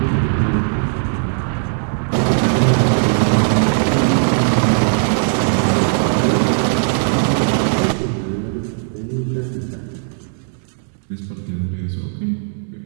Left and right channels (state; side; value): silent; left; digital silence